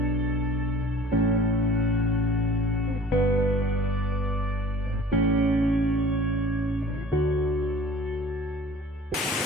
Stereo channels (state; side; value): normal; both; correlation 0.47